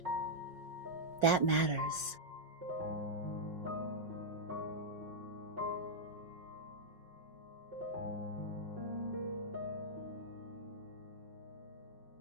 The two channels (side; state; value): left; late; 5.4 ms